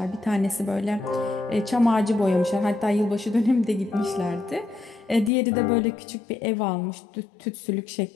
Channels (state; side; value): drops out; right; at 5.3 s